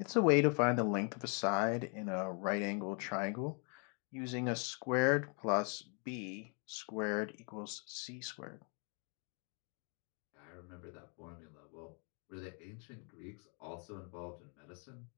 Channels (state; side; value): quieter; right; 38.8 dB